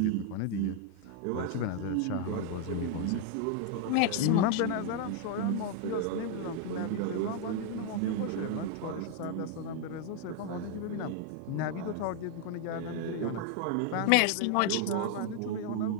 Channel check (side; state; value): both; different; correlation 0.00